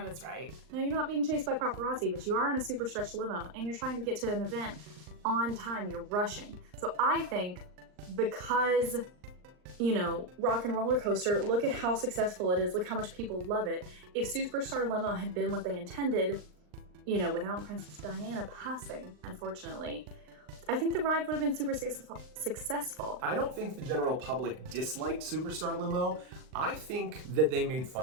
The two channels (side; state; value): left; late; 39 ms